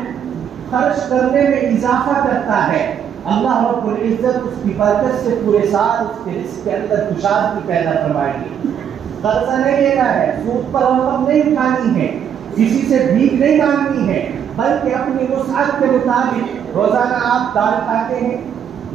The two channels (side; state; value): left; quieter; 8.6 dB